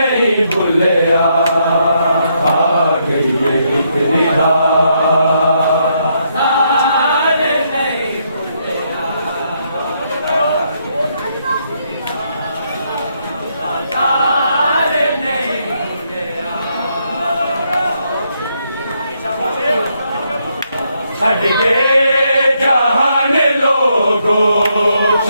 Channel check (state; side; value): inverted; both; correlation -0.76